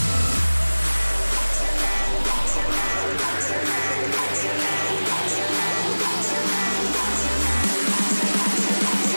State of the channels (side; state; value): both; inverted; correlation -1.00